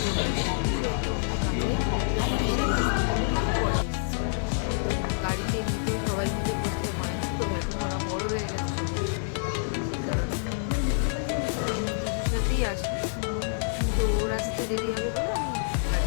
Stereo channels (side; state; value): right; silent; 60 dB below the other